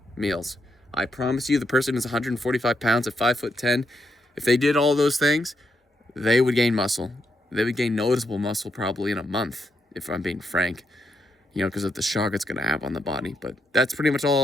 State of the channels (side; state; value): both; normal; correlation 0.81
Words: meals. I promise you, the person who's 145 pounds at 5'10", if they did all those things, they would gain muscle. They would gain noticeable muscle probably in a month, if I'm being frank, because of the shock it's going to have on the body. But that's pretty much